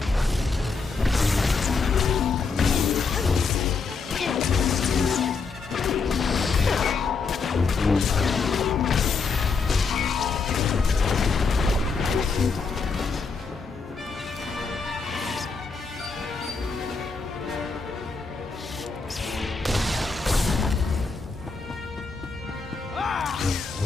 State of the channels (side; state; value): right; quieter; 4.7 dB